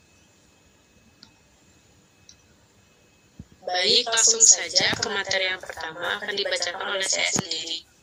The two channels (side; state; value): both; identical; correlation 1.00